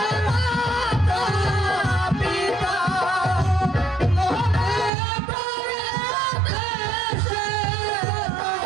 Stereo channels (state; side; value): drops out; left; at 4.9 s